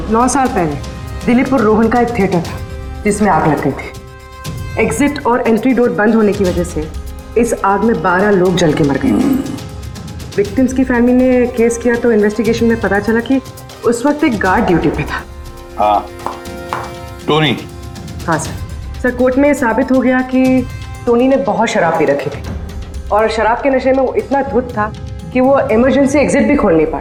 9 साल पहले दिलीप और रोहन का एक थिएटर था जिसमें आग लग गई थी। एग्जिट और एंट्री डोर बंद होने की वजह से इस आग में 12 लोग जल के मर गए। विक्टिम्स की फैमिली ने केस किया तो इन्वेस्टिगेशन में पता चला कि उस वक्त एक गार्ड ड्यूटी पे था। हाँ, टोनी। हाँ सर, कोर्ट में साबित हो गया कि टोनी ने बहुत शराब पी रखी थी और शराब के नशे में वो इतना धुत था कि वो इमरजेंसी एग्जिट भी खोल नहीं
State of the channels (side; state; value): both; identical; correlation 1.00